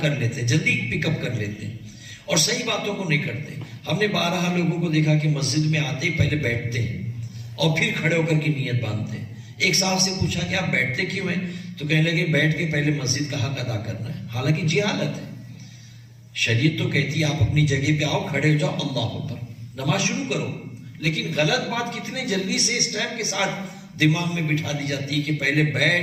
کر لیتے ہیں، جلدی پک اپ کر لیتے ہیں اور صحیح باتوں کو نہیں کرتے. ہم نے 12 لوگوں کو دیکھا کہ مسجد میں آتے ہی پہلے بیٹھتے ہیں اور پھر کھڑے ہو کر کے نیت باندھتے ہیں. ایک صاحب سے پوچھا کہ آپ بیٹھتے کیوں ہیں؟ تو کہنے لگے بیٹھ کے پہلے مسجد کا حق ادا کرنا ہے. حالانکہ جہالت ہے. شریعت تو کہتی ہے آپ اپنی جگہ پہ آؤ، کھڑے ہو جاؤ، اللہ اکبر، نماز شروع کرو. لیکن غلط بات کتنے جلدی سے اس ٹائم کے ساتھ دماغ میں بٹھا دی جاتی ہے کہ پہلے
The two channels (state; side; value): identical; both; correlation 1.00